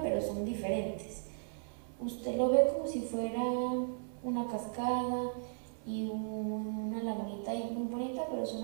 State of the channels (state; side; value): silent; left; 54 dB below the other